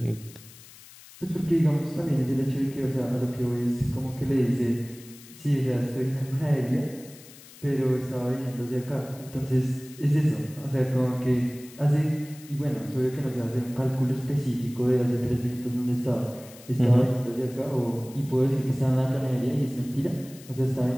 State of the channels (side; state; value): left; noise; hiss, 20 dB below the sound